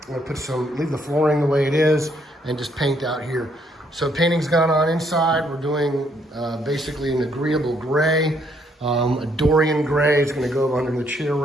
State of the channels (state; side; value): normal; both; correlation 0.71